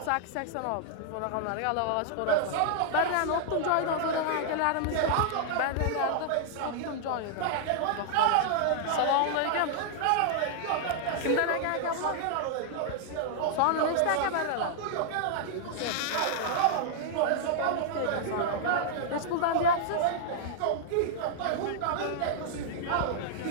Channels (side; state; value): both; different; correlation -0.01